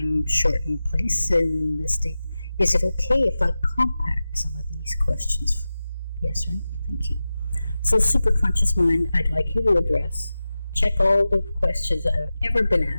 place in this state, is it okay if I compact some of these questions? Yes or no? Thank you. So, superconscious mind, I'd like you to address, check all the questions that have ever been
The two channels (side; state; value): both; inverted; correlation -0.95